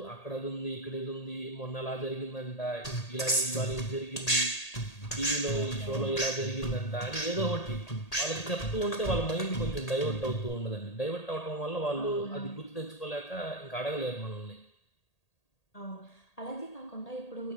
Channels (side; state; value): right; late; 1.8 ms